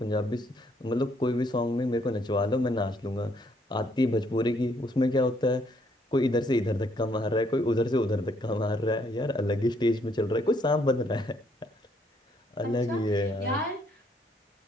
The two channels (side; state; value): both; normal; correlation 0.69